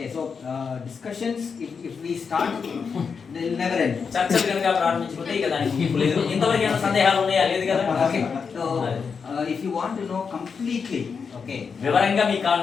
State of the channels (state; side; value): quieter; right; 5.8 dB